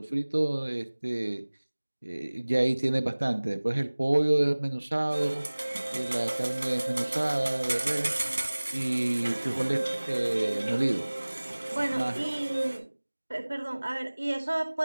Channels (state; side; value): inverted; both; correlation -1.00